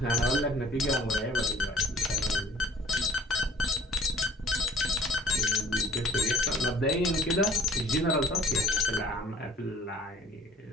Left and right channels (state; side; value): normal; both; correlation 0.52